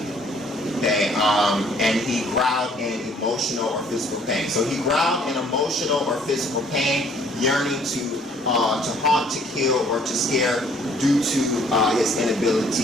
Okay, and he growled in emotional or physical pain. So he growled in emotional or physical pain, yearning to haunt, to kill, or to scare due to his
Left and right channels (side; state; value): both; normal; correlation 0.60